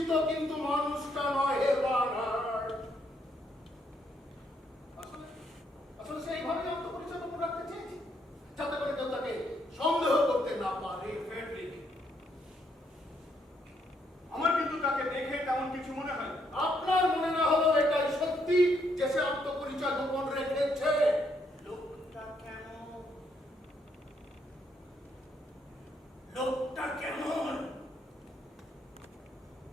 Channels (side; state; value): both; normal; correlation 0.73